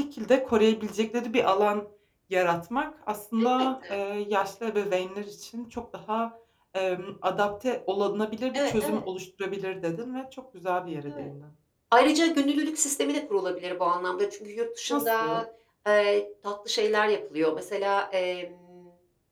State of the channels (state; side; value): identical; both; correlation 1.00